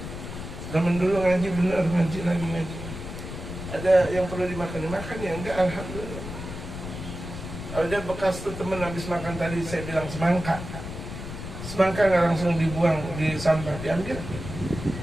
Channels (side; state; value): left; noise; rumble, 9 dB below the sound